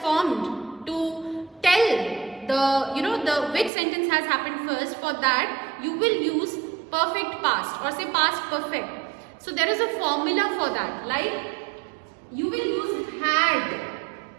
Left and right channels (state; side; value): drops out; left; at 3.7 s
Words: formed to tell the which sentence has happened first, for that you will use perfect past or say past perfect. So there is a formula for that, like you will use had